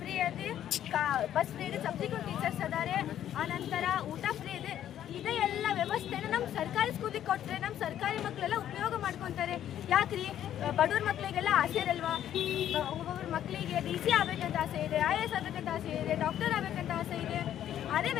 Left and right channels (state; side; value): quieter; right; 11.0 dB